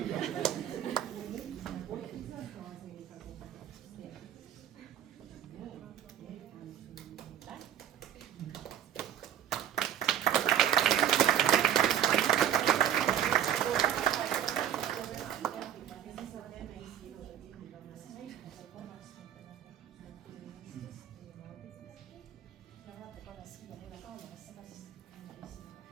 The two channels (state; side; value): quieter; left; 10.3 dB